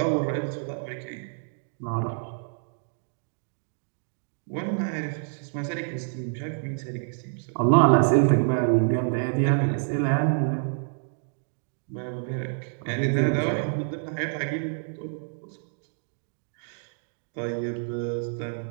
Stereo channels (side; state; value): left; silent; digital silence